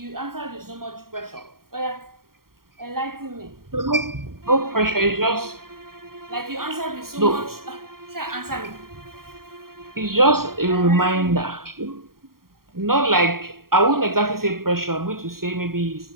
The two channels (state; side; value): late; left; 0.93 ms